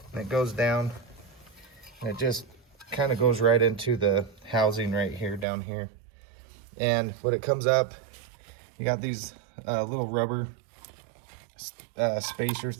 And it goes down. And it just kind of goes right into the housing right here, down here. And when it comes up, you got these little rubber spacer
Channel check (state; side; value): drops out; left; at 5.5 s